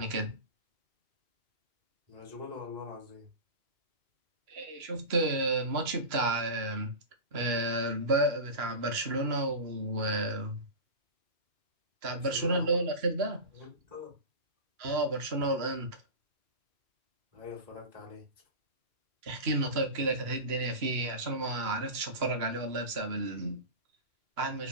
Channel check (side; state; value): left; late; 2.9 ms